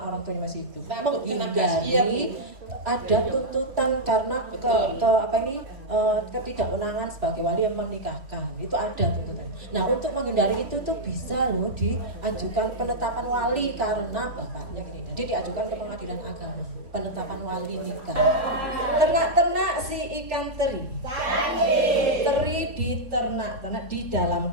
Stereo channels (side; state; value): left; late; 3.5 ms